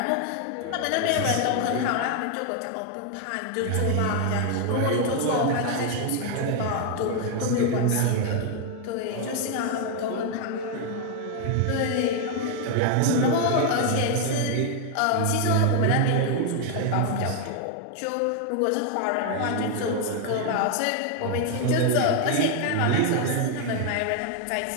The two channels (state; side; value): different; both; correlation 0.00